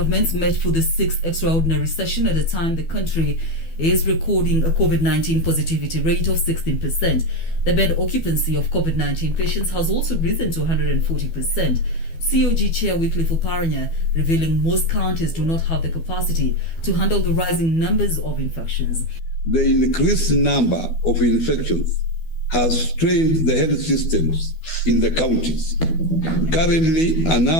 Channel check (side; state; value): right; late; 12 ms